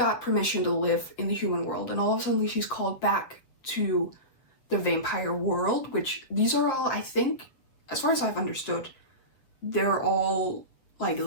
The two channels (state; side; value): late; right; 7.7 ms